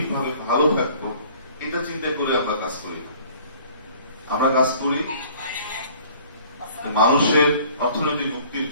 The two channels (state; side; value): inverted; both; correlation -0.53